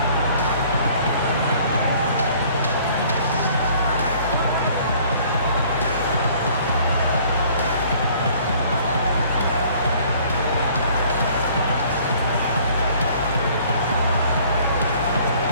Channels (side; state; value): both; inverted; correlation -0.56